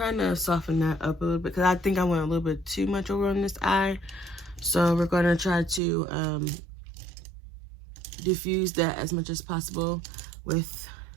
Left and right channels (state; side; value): drops out; left; at 5.8 s